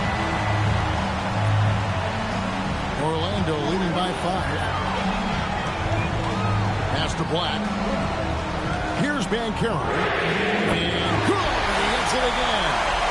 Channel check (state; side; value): identical; both; correlation 1.00